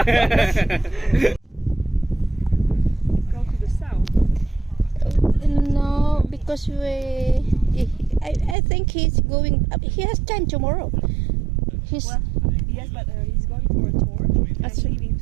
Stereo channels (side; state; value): left; drops out; at 8.6 s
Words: Go to the south. no, because I think he's going. He has time tomorrow. He's Well, yes, but he's going for a tour That's and right. leaving